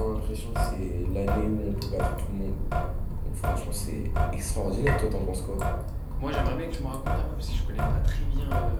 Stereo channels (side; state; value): both; identical; correlation 1.00